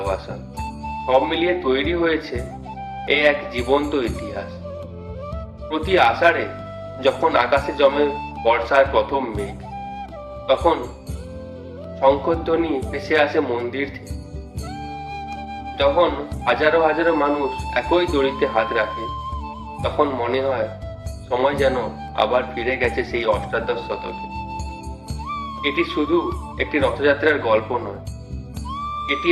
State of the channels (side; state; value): both; identical; correlation 1.00